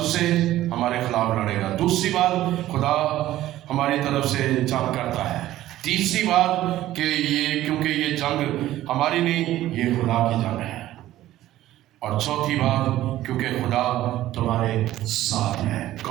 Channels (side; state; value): left; quieter; 14.4 dB